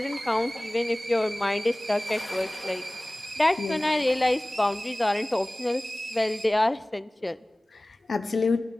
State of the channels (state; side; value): normal; both; correlation 0.98